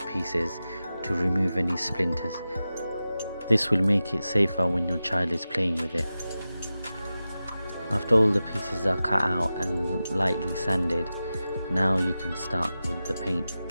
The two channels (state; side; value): inverted; both; correlation -0.94